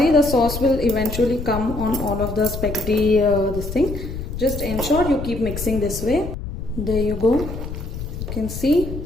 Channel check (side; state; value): left; noise; rumble, 7 dB below the sound